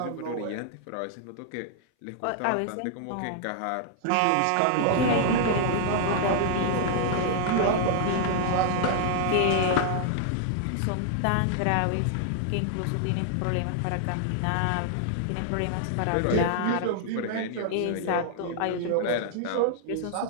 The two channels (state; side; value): different; both; correlation -0.01